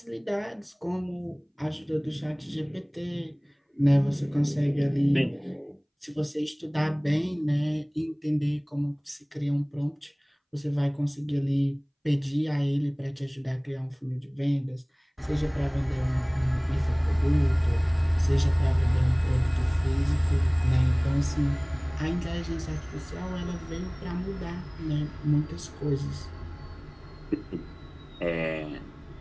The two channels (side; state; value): both; identical; correlation 1.00